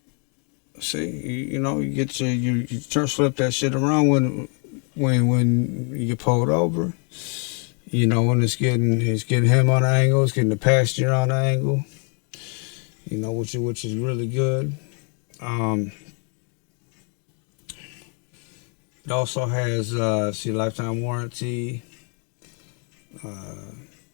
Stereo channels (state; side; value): quieter; right; 38.9 dB